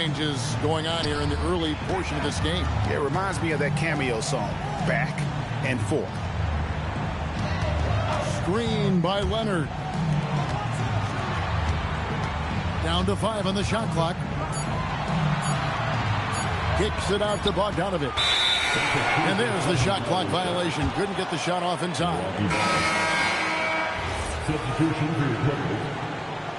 going on here in the early portion of this game. It reminds me of that cameo song, Back and Forth. Screen by Leonard. Down to 5 on the shot clock. Kicks it out to Bogdanovich. And there's the shot clock violation. Couldn't get the shot off in time. Substitution for your Clippers.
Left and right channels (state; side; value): identical; both; correlation 1.00